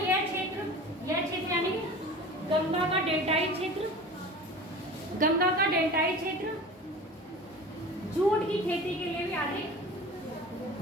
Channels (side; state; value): both; normal; correlation 0.37